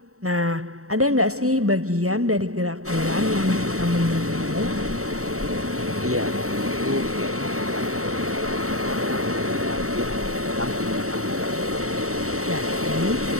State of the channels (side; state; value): left; late; 0.64 ms